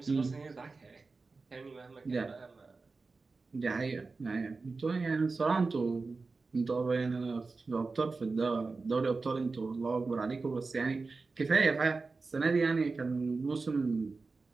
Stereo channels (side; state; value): left; quieter; 4.0 dB